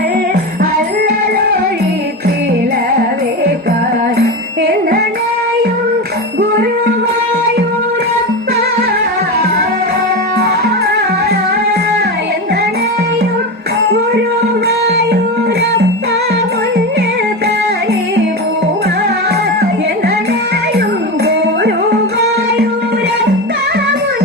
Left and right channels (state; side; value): normal; both; correlation 0.20